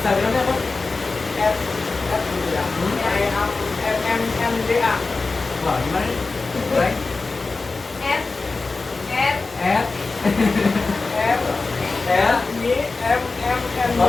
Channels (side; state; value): right; quieter; 3.8 dB